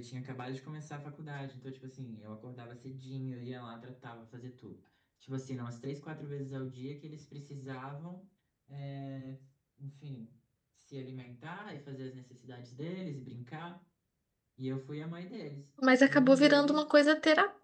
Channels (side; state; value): both; identical; correlation 1.00